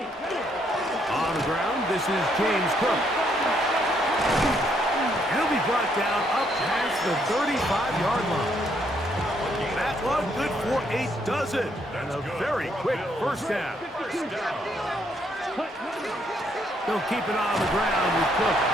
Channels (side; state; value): both; normal; correlation 0.72